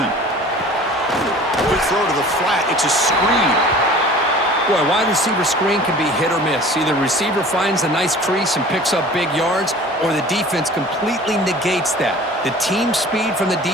Quick throw to the flat. It's a screen. Boy, wide receiver screen can be hit or miss. Either receiver finds a nice crease and picks up big yards, or the defense completely negates that. The team speed from the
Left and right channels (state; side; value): normal; both; correlation 0.44